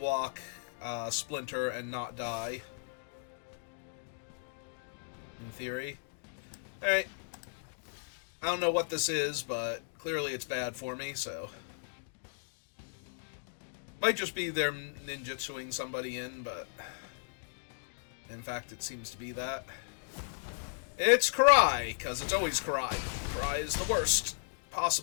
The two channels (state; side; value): silent; right; digital silence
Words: Splinter and not die, in theory. Alright, I don't know what this is, but clearly it's bad for me, so... Might just be they're ninjutsuing somebody in, but... In fact, it seems to be that. It's Karai, because it's always Karai. Karai is the worst